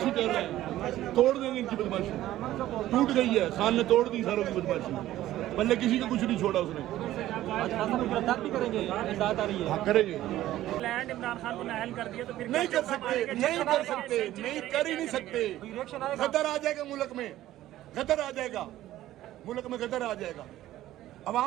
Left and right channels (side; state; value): left; quieter; 14.3 dB